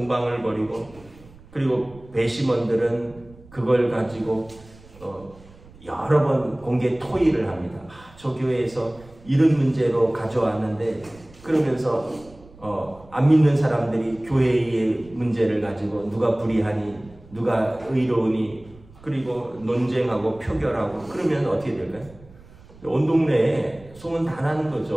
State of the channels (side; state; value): right; noise; rumble, 23 dB below the sound